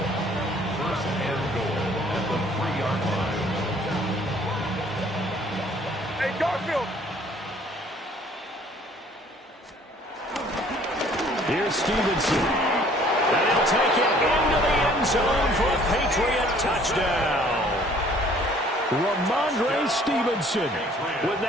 1st and goal at the 3-yard line. Hey, Garfield. Here's Stevenson. And he'll take it into the end zone for a Patriot touchdown. Ramondre Stevenson with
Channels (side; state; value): both; normal; correlation 0.57